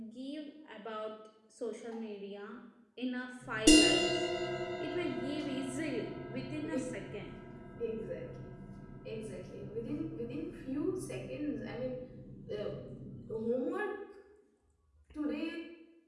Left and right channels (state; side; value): identical; both; correlation 1.00